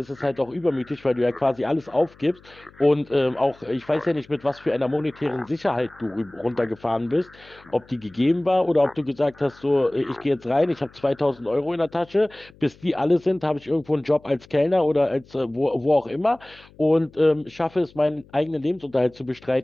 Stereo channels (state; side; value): noise; left; hum, 26 dB below the sound